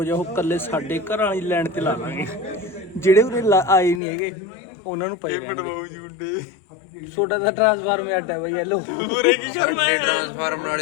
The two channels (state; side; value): drops out; right; at 4.0 s